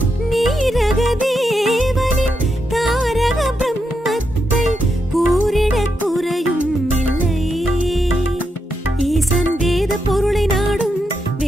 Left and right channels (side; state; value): both; normal; correlation 0.83